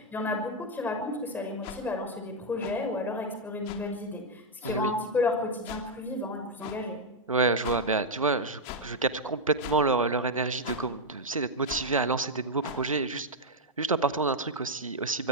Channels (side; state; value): both; normal; correlation -0.01